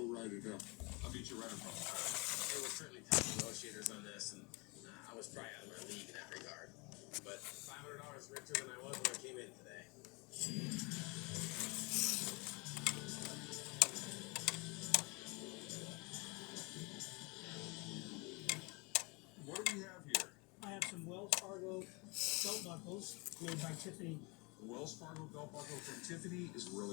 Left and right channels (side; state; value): right; quieter; 28.9 dB